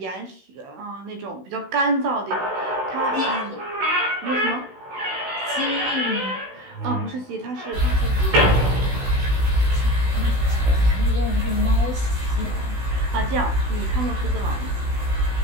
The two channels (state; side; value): late; left; 16 ms